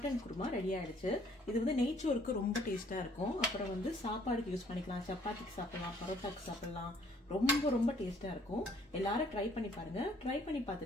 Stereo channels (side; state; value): both; normal; correlation 0.61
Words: குருமா ரெடி ஆயிடுச்சு. இது வந்து நெய்ச்சோருக்கு ரொம்ப டேஸ்ட்டாக இருக்கும். அப்புறம் வந்து சாப்பாடுக்கு யூஸ் பண்ணிக்கலாம், சப்பாத்திக்கு சாப்பிடலாம், பரோட்டாக்கு சாப்பிடலாம். ரொம்ப ரொம்ப டேஸ்ட்டாக இருக்கும். எல்லாரும் ட்ரை பண்ணி பாருங்க. ட்ரை பண்ணி